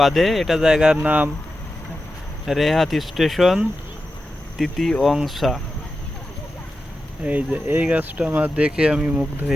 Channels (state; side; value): normal; both; correlation 0.91